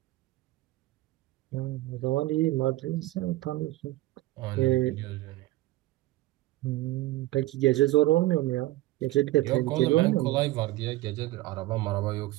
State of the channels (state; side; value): quieter; left; 17.3 dB